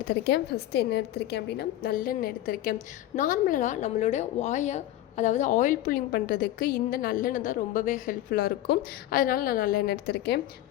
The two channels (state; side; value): quieter; right; 13.9 dB